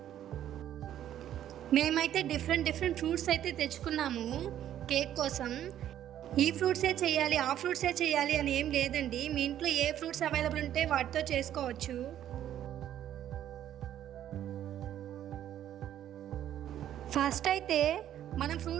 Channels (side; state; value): left; quieter; 11.3 dB